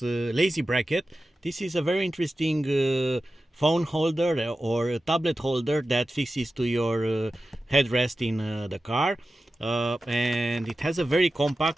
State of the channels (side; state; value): both; normal; correlation 0.94